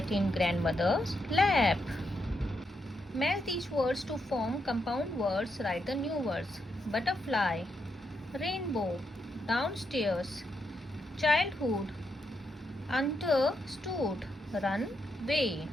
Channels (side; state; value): both; normal; correlation 0.82